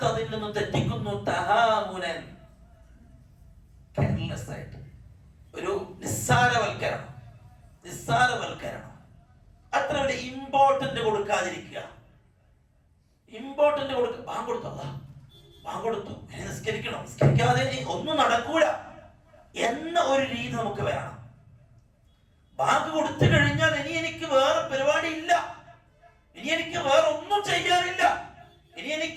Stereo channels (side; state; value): both; identical; correlation 1.00